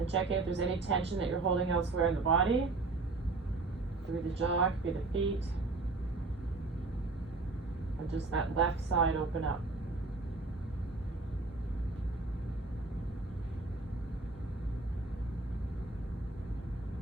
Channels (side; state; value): left; quieter; 3.5 dB